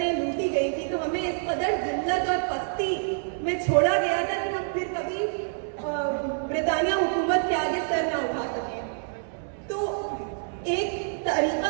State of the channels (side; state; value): left; silent; digital silence